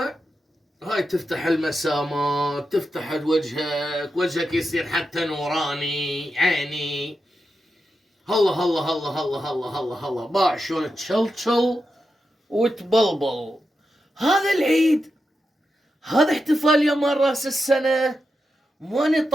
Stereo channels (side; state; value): both; normal; correlation 0.88